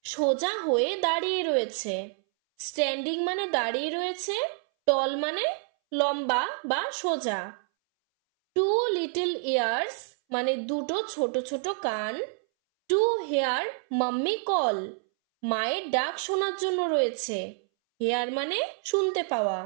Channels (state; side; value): silent; left; 59 dB below the other